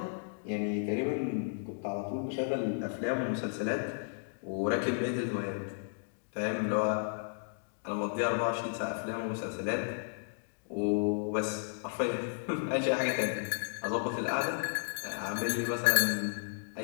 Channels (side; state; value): right; silent; digital silence